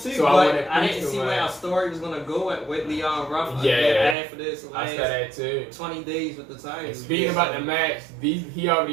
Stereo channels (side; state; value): left; drops out; at 4.2 s